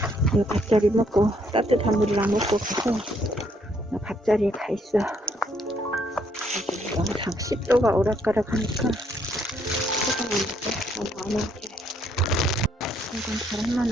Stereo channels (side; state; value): both; normal; correlation 0.69